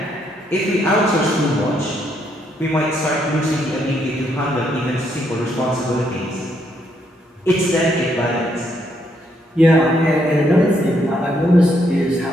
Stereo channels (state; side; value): normal; both; correlation 0.74